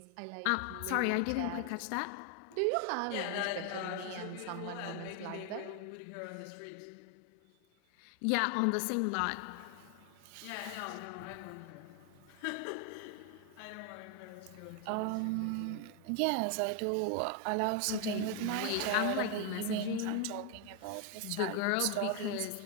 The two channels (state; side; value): different; both; correlation 0.01